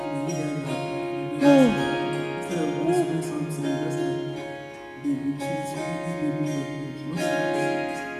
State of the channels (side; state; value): both; identical; correlation 1.00